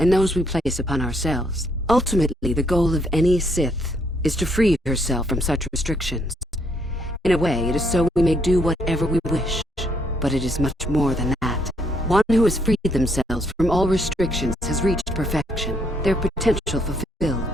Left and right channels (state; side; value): normal; both; correlation 0.71